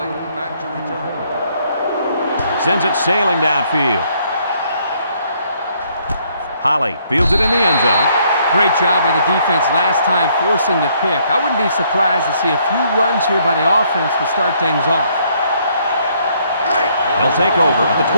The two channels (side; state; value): both; inverted; correlation -0.68